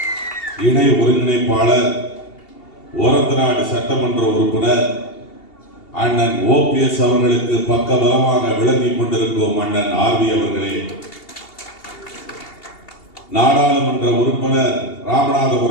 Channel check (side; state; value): right; late; 2.8 ms